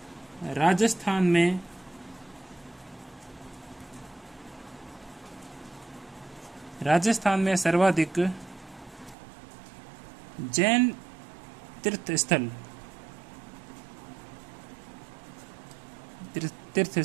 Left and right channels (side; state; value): left; drops out; at 9.2 s